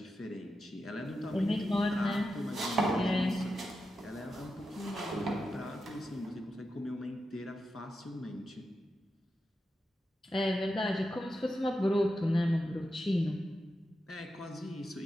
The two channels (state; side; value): normal; both; correlation 0.89